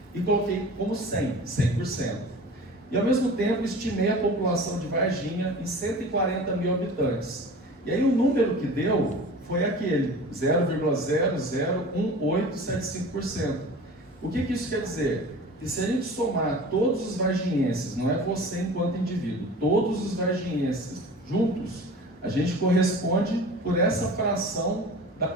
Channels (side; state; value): both; normal; correlation 0.39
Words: e coloquei como 100%. E ao mesmo tempo estimei a população de Varginha em 140 mil habitantes. E aí o número que deu foi aquele, 0,001875%. O que isso quer dizer? Que se a gente somar todos os varginhenses, não é você enquanto indivíduo, todos os varginhenses juntos, a gente corresponde por essa fração da